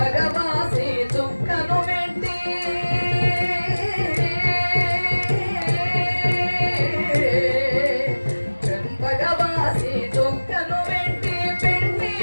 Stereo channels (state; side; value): inverted; both; correlation -1.00